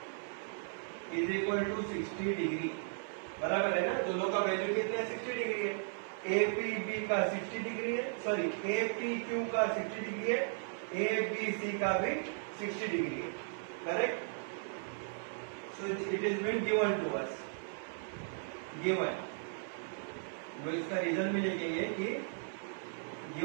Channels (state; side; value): silent; left; 54 dB below the other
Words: is equal to 60 degree. बराबर है ना, दोनों का value कितने 60 degree है. APB का 60 degree है, sorry APQ का 60 डिग्री है, ABC का भी 60 डिग्री है. Correct. So it is been given to us. Given, वो इसका रीजन भी लिखेंगे कि